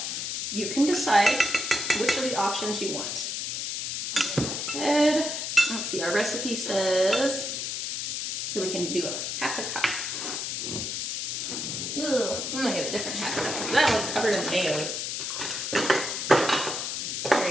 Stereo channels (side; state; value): left; noise; hiss, 3 dB below the sound